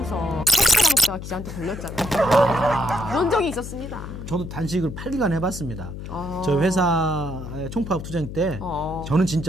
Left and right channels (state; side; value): noise; left; hum, 9 dB below the sound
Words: 칼퇴라 먹다가 기자한테 걸렸잖아요. 그런 적이 있었습니다. 저도 단식을 8일간 해봤습니다. 저희 회사의 총파업 투쟁 때 저는